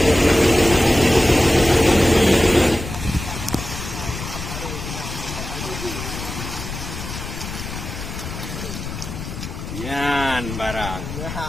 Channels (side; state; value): left; noise; rumble, 8 dB below the sound